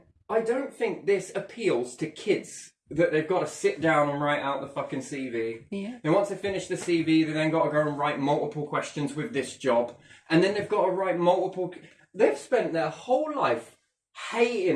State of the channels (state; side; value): identical; both; correlation 1.00